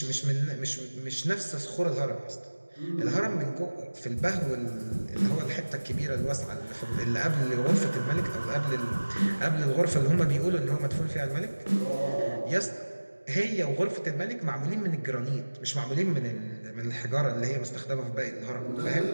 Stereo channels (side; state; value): both; inverted; correlation -1.00